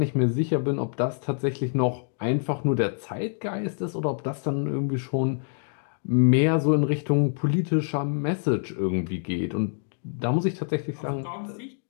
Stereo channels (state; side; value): silent; right; digital silence